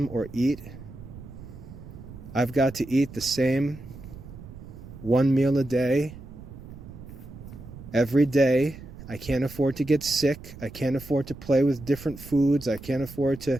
or eat. I've got to eat the same one meal a day, every day. I can't afford to get sick. I can't afford to play with different foods. I can't afford to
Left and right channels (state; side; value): noise; right; rumble, 15 dB below the sound